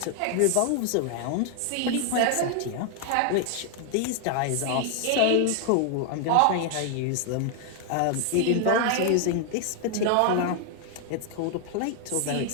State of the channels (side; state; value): both; different; correlation 0.00